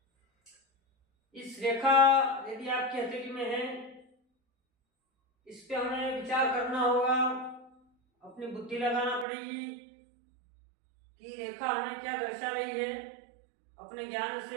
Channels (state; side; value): drops out; left; at 9.2 s